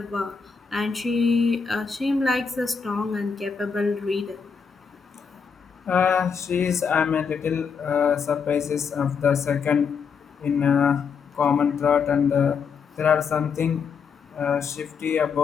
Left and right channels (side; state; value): right; quieter; 6.0 dB